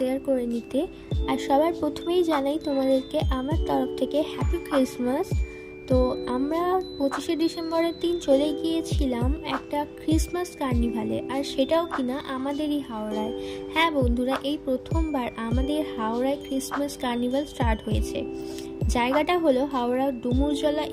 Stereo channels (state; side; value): identical; both; correlation 1.00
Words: করে নিতে। আর সবার প্রথমেই জানাই তোমাদেরকে আমার তরফ থেকে হ্যাপি ক্রিসমাস। তো আমরা 25শে ডিসেম্বরের দিন চলে গিয়েছিলাম একটা ক্রিসমাস কার্নিভালে, আর সেটাও কিনা আমাদেরই হাওড়ায়। হ্যাঁ বন্ধুরা, এই প্রথমবার আমাদের হাওড়ায় ক্রিসমাস কার্নিভাল স্টার্ট হয়েছে। জায়গাটা হলো হাওড়া ডুমুরজলা